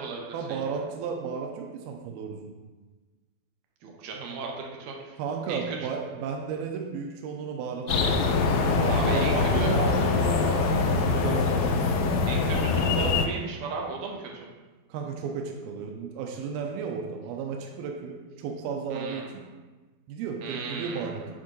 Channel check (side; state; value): left; late; 11 ms